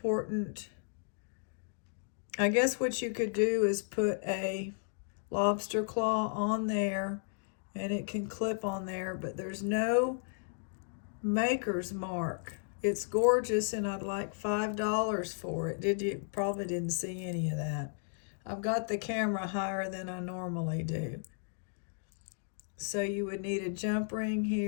I guess what you could do is put a lobster claw on there, and it can clip on there, but there's no maker's mark. It's gorgeous, and I'd like $5 for it. You probably didn't see any of that. I've got the camera higher than I normally do. So you would need a jump ring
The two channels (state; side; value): silent; right; digital silence